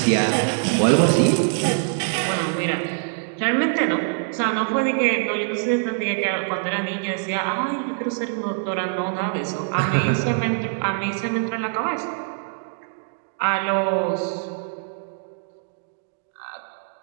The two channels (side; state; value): left; silent; digital silence